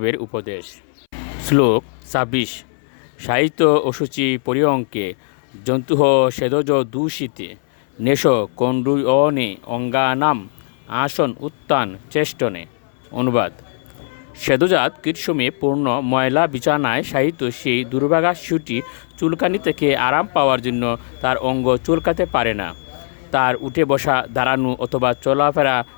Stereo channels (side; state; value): right; silent; 61 dB below the other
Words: উপদেশ। শ্লোক 26। সাহিত্য অশুচি পরিয়ঙ্কে জন্তুহ সেদজ দূষিতে নেশ কণ্ডুয়নে অঙ্গানাম আসন উত্তান চেষ্টনে। অনুবাদ: সেদজাত কীটসমে পূর্ণ ময়লা বিছানায় সাহিত্য সেই দুর্ভাগা শিশুটি চুলকানি থেকে আরাম পাওয়ার জন্য তার অঙ্গ চুলকাতে পারে না। তার উঠে বসা, দাঁড়ানো অথবা চলাফেরা